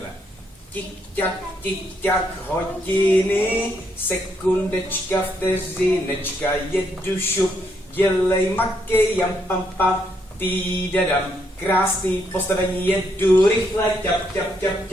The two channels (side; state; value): both; normal; correlation 0.75